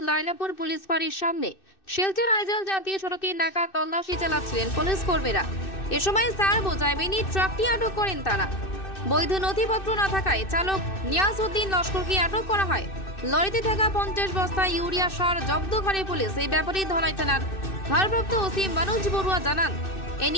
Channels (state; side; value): late; right; 2.6 ms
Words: লাইলাপুর পুলিশ ফাঁড়ির সামনে শিলচর আইজল জাতীয় সড়কে নাকা তল্লাশি চালাচ্ছিলেন পুলিশ কর্মীরা। এ সময় সার বোঝায় মিনি ট্রাকটি আটক করেন তারা। বৈধ নথিপত্র না থাকায় চালক নিয়াজউদ্দিন লস্করকে আটক করা হয়। লরিতে থাকা 50 বস্তা ইউরিয়া সার জব্দ করে পুলিশ। এই ব্যাপারে ধলাই থানার ভারপ্রাপ্ত ওসি মনোজ বড়ুয়া জানান, এ